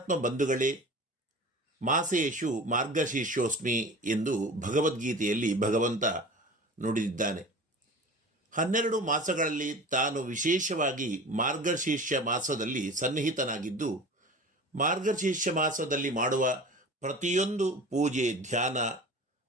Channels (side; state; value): both; normal; correlation 0.37